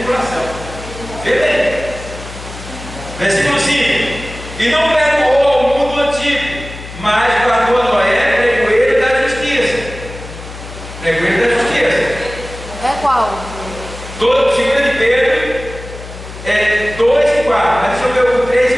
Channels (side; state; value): left; noise; hum, 13 dB below the sound